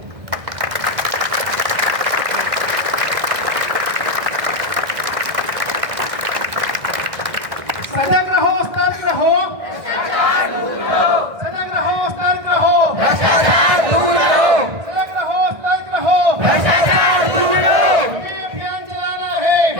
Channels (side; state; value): left; late; 1.6 ms